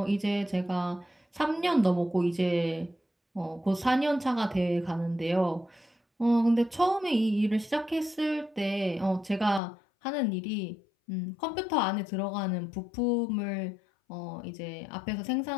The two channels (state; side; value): drops out; right; at 9.6 s